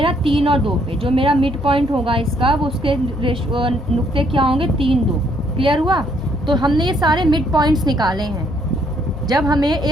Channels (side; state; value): both; normal; correlation 0.68